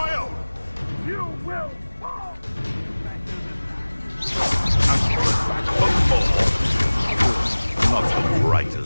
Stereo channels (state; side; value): inverted; both; correlation -1.00